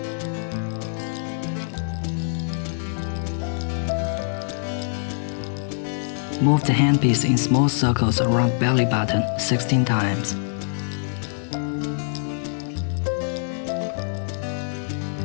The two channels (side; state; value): right; silent; digital silence